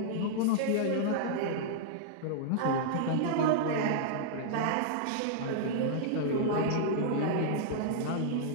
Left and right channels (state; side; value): different; both; correlation -0.02